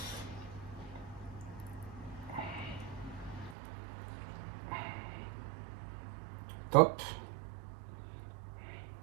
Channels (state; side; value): drops out; left; at 3.6 s